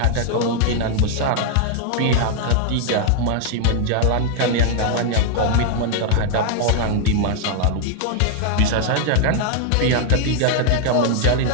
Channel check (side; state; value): both; different; correlation 0.00